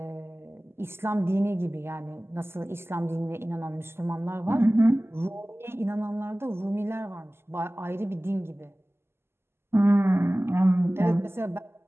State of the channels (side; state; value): left; late; 0.12 ms